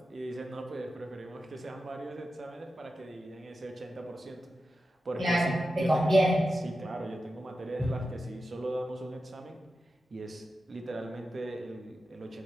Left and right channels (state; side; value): normal; both; correlation 0.91